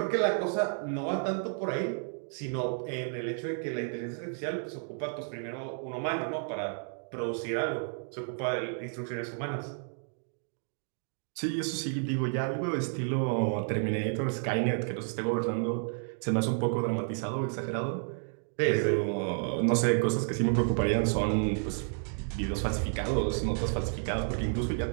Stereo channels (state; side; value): silent; left; 57 dB below the other